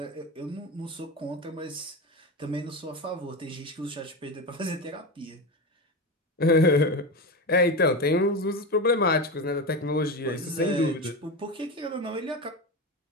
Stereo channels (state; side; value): normal; both; correlation 0.20